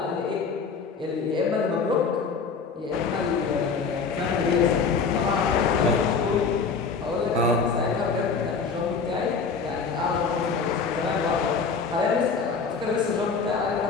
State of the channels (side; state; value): right; quieter; 5.2 dB